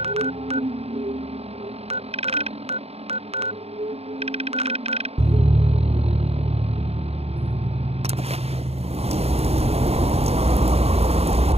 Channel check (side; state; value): left; late; 0.30 ms